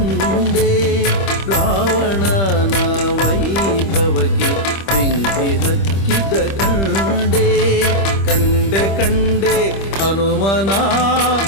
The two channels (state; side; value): late; right; 25 ms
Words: ರಾವಣನ ವೈಭವಕ್ಕೆ ಬೆಂಕಿ ಹಚ್ಚಿದ್ದ ಕಂಡೆ ಕಂಡೆ ಕಂಡೆ ಹನುಮನ